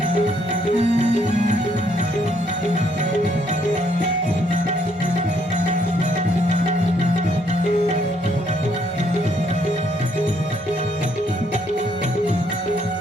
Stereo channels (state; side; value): normal; both; correlation 0.70